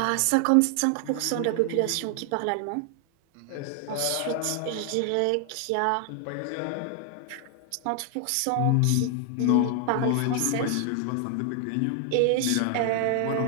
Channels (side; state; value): both; different; correlation 0.00